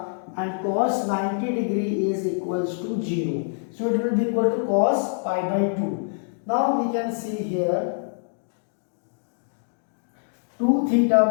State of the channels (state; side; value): silent; right; digital silence